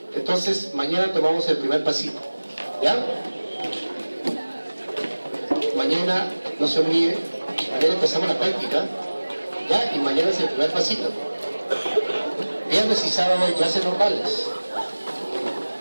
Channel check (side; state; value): both; inverted; correlation -1.00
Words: Entonces, mañana tomamos el primer pasito, ¿ya? Mañana, no se olvide, mañana empezamos la práctica, ¿ya? Y mañana es el primer pasito. Viernes y sábado hay clases normales.